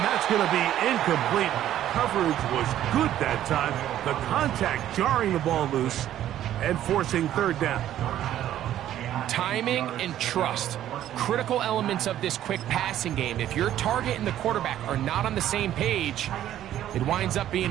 that's going to be incomplete. Coverage was good that time. The contact jarring the ball loose and forcing third down. Timing and trust, critical elements of this quick passing game. If your target and the quarterback are not on the same page, it winds up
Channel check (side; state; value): left; quieter; 12.0 dB